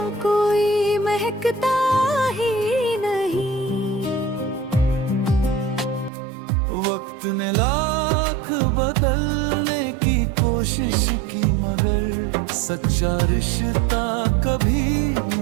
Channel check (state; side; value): drops out; left; at 6.1 s